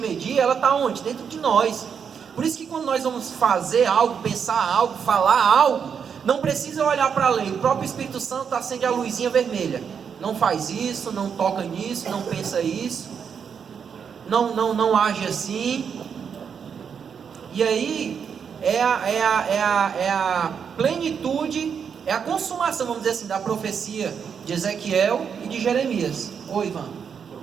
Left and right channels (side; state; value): left; quieter; 7.0 dB